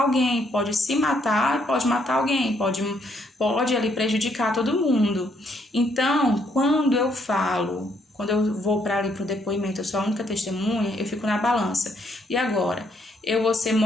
alguém, pode se matar e pode matar alguém, pode ali prejudicar todo mundo. Então, quando eu vou para ali para o depoimento, eu sou a única testemunha, eu fico na balança. E agora, eu vou ser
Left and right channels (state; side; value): normal; both; correlation 0.72